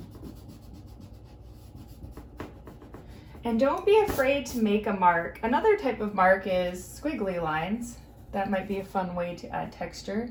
And don't be afraid to make a mark. Another type of mark is squiggly lines. That might be a fun way to add texture.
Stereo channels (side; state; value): both; identical; correlation 1.00